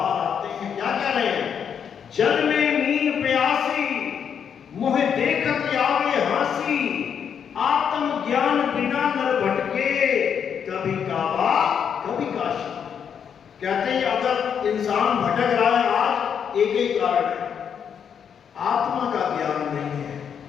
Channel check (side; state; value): right; quieter; 7.7 dB